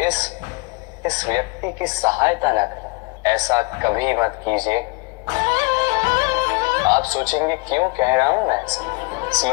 इस व्यक्ति की सहायता न करें। ऐसा कभी मत कीजिए। आप सोचेंगे क्यों कह रहा हूं मैं ऐसा?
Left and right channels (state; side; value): quieter; right; 28.0 dB